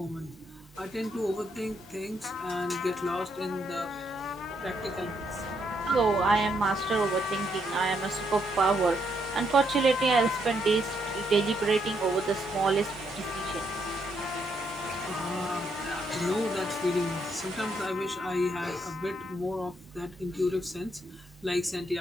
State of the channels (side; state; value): both; normal; correlation 0.76